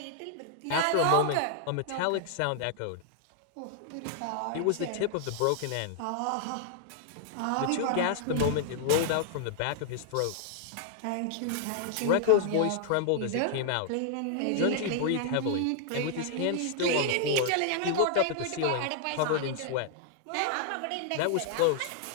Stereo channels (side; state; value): both; different; correlation -0.01